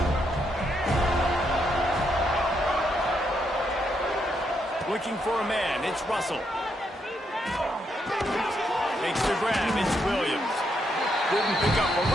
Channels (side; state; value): both; normal; correlation 0.78